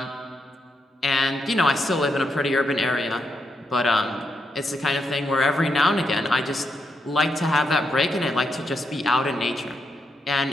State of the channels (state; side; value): normal; both; correlation 0.81